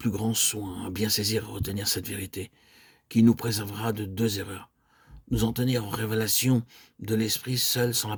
grand soin à bien saisir et retenir cette vérité, qui nous préservera de deux erreurs. Nous en tenir en révélation de l'Esprit seul sans la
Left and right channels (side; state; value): both; identical; correlation 1.00